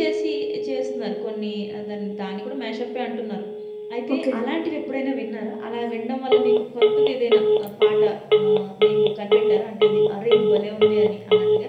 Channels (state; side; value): identical; both; correlation 1.00